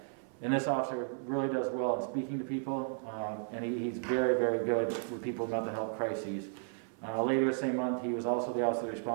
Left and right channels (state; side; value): silent; left; 55 dB below the other